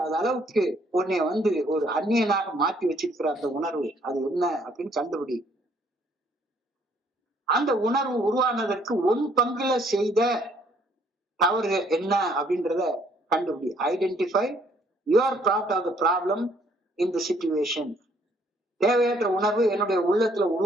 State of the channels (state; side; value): normal; both; correlation 0.65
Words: அளவுக்கு உன்னை ஒரு அந்நியனாக மாற்றி வச்சிருக்கிற அந்த உணர்வு அது என்ன அப்படின்னு கண்டுபிடி. அந்த உணர்வு உருவானதற்கு உன் பங்குல செய்த தவறு என்ன அப்படின்றத கண்டுபிடி. Identify your part of the problem in the situation. தேவையற்ற உணர்வு என்னுடைய உள்ளத்துல